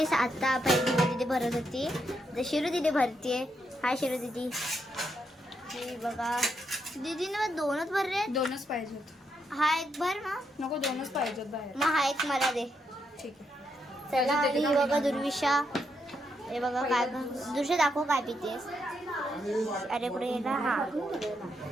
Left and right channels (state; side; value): normal; both; correlation 0.80